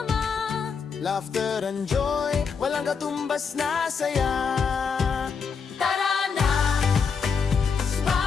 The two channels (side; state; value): right; quieter; 5.8 dB